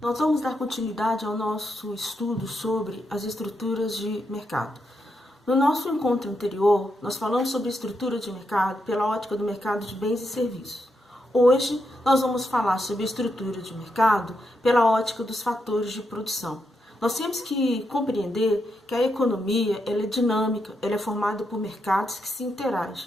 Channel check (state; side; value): normal; both; correlation 0.83